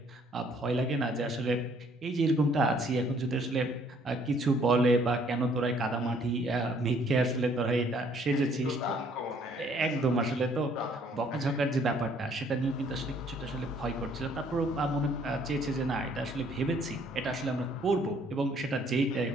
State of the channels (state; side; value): normal; both; correlation 0.62